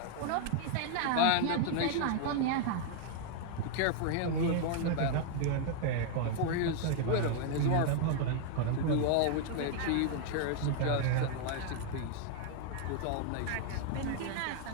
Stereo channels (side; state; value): both; different; correlation 0.00